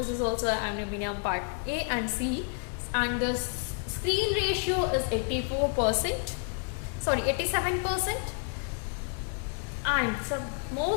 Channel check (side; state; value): right; quieter; 39.0 dB